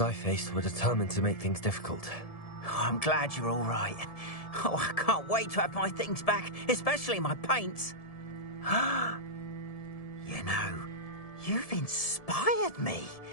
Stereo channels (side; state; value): right; late; 1.7 ms